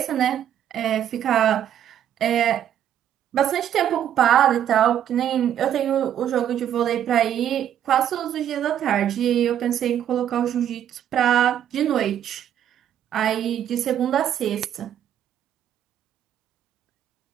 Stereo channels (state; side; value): quieter; left; 10.3 dB